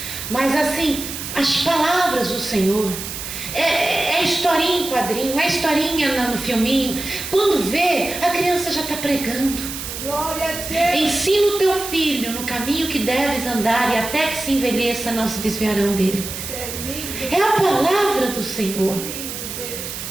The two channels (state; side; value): noise; right; hiss, 7 dB below the sound